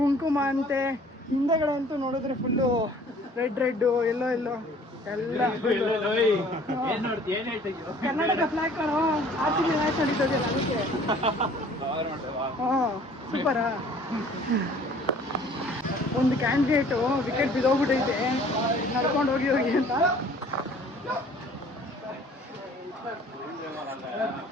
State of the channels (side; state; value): both; normal; correlation 0.53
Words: ಅಂತೆ, ಹಿಂದೆಗಡೆ ಅಂತೂ ನೋಡಿದ್ರೆ ಫುಲ್ಲು ರೆಡ್ ಎಲ್ಲೋ ಎಲ್ಲ ಏನ್ ನೋಡ್ತಿ ಏನ್ ಹೇಳ್ತಿದ್ಯೋ ಕರ್ನಾಟಕ ಫ್ಲಾಗ್ ಕಾಣೋ RCB ಮ್ಯಾಚ್ ನಡೀತದಲ್ಲ ಅದಕ್ಕೆ. ಹಾಂ ಸೂಪರಾ. ಒಂದು ಕ್ಯಾಂಡಿಡೇಟು ವಿಕೆಟ್ ಬಿದ್ದೋಗ್ಬಿಟ್ಟೈತೆ ನಡ್ಕೊಂಡು ಹೋಗಿ ಅಂತ.